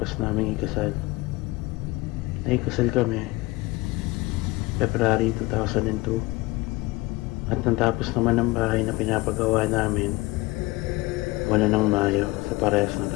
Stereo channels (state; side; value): quieter; right; 21.9 dB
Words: naming ikasal. Naikasal kami February 2002 at natapos naman ang bahay na pinapagawa namin buwan ng Mayo sa parehas na